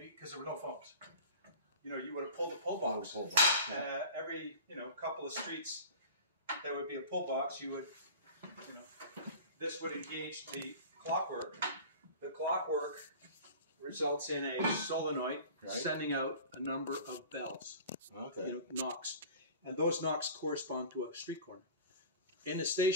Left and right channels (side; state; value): both; inverted; correlation -0.38